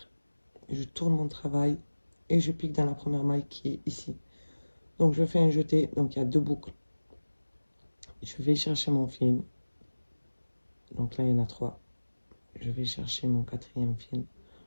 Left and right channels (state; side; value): inverted; both; correlation -1.00